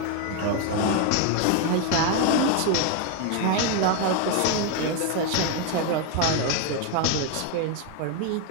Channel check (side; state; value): both; different; correlation 0.01